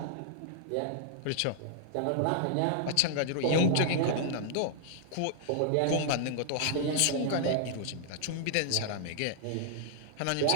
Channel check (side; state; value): both; different; correlation -0.01